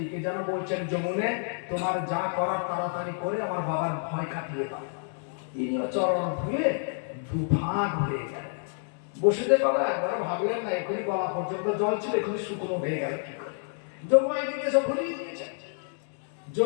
যেন বলছেন, যমুনে তোমার যা করার তাড়াতাড়ি করে আমার বাবার ভয় কাটিয়ে দাও। তিনিও চরণ ধুয়ে দুভাগ হয়ে গেলেন। বসুদেব বাবা একবার ভাবলেন না, এখনই গলা পর্যন্ত জল ছিল, এখনই শুকনো হয়ে গেল কি করে? যোগমায়া দিকে সব ভুলিয়ে দিয়েছেন।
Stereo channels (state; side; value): silent; right; 59 dB below the other